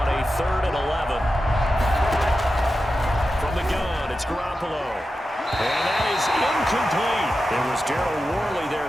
a 3rd and 11. From the gun, it's Garoppolo. And that is incomplete. It was Darryl Worley there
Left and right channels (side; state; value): both; normal; correlation 0.91